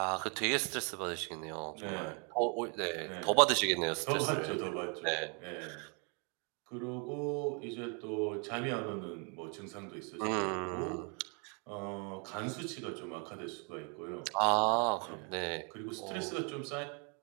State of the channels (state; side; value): quieter; left; 36.4 dB